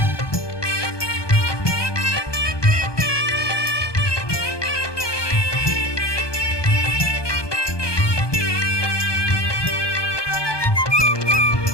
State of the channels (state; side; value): late; right; 1.2 ms